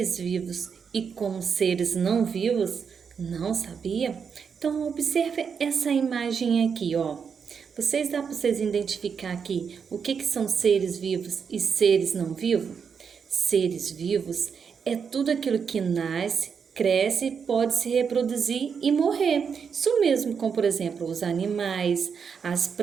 vivos e como seres não vivos? Não sabia? Então observe essa imagem aqui, ó. Dá para vocês identificar aqui o que são seres vivos e seres não vivos? Seres vivos é tudo aquilo que nasce, cresce, pode se reproduzir e morrer. Isso mesmo, como por exemplo os animais, as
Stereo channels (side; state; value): left; quieter; 6.4 dB